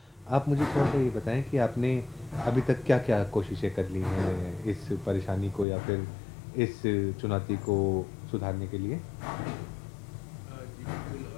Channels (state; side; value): drops out; right; at 5.7 s